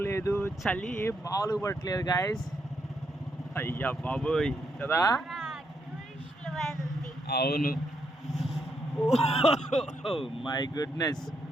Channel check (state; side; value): normal; both; correlation 0.78